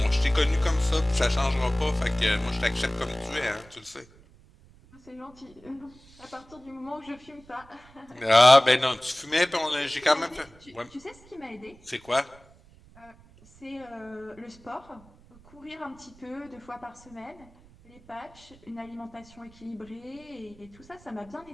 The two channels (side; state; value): right; noise; rumble, 25 dB below the sound